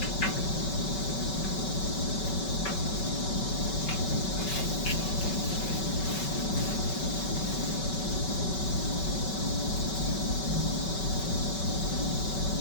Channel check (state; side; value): late; right; 5.3 ms